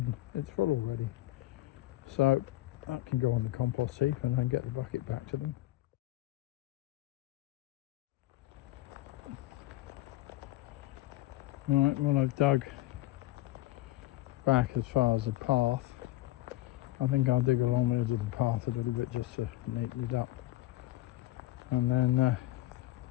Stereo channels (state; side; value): quieter; right; 16.8 dB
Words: it's full already. So that can go on the compost heap and then get the bucket back to them. Right, well I've dug back as far as the path. I think I'll dig along the edge of the path a little bit just to neaten it up, and then